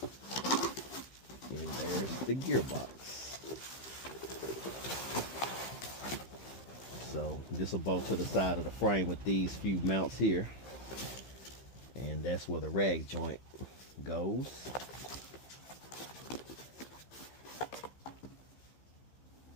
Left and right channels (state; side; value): late; right; 15 ms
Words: And there's the gearbox. So this will bolt to the side of the frame with these few mounts here, and that's where the rag joint goes.